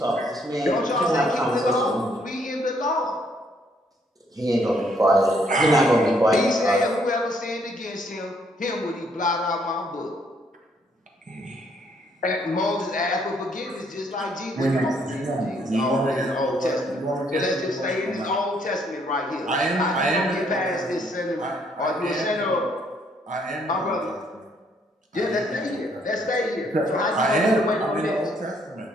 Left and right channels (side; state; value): both; normal; correlation 0.69